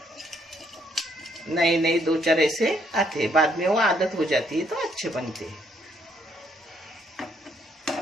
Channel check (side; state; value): both; normal; correlation 0.70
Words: नए नए दो चार ऐसे आते, बाद में वो आदत हो जाती है तो अच्छे बनते हैं।